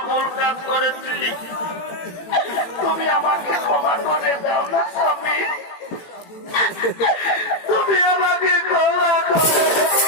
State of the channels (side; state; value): right; late; 18 ms